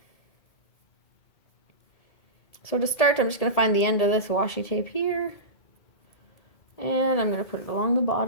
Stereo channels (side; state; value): right; late; 1.8 ms